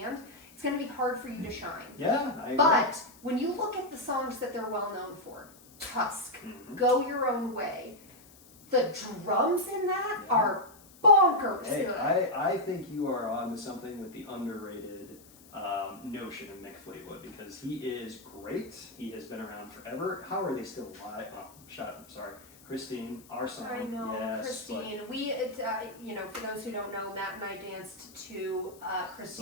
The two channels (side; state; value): left; noise; hiss, 24 dB below the sound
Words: it's going to be hard for you to shine. Yeah, I agree. But when you look at the songs that they're well known for, Tusk, Go Your Own Way, the drums in that are bonkers Hey, good. I think you are on to something with the underrated notion of Mick Fleetwood because he is great. He has been around forever. How are they still alive? Oh, shut up. I'm sorry. Christine, our song. I know, yes, Christine. For those who don't know, Matt and I danced to